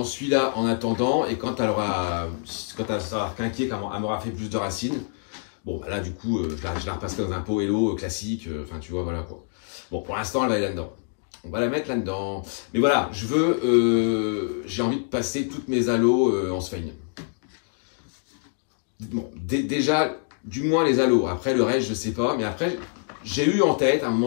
celui-là en attendant, et quand elle sera quinquée, quand elle m'aura fait plus de racines, bon bah là du coup je la repasse dans un pot Hello classique, enfin tu vois voilà quoi. Bon pour l'instant elle va aller là-dedans. On va la mettre là-dedans. Mais voilà, j'ai envie de passer toutes mes halos en sphène. Bon, déjà, du moins les halos. Après, le reste, je sais pas. Mais après, j'ai eu en tête, à un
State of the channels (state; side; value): silent; right; 61 dB below the other